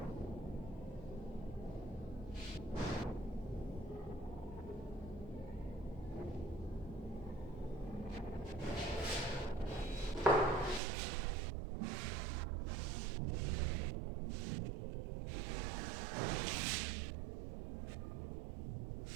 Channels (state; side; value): drops out; left; at 10.8 s